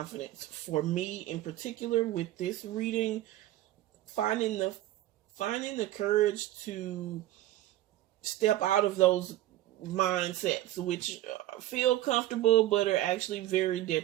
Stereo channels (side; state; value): left; quieter; 15.0 dB